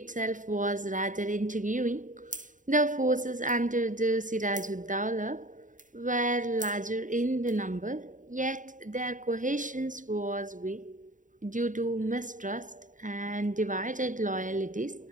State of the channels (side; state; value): left; late; 0.37 ms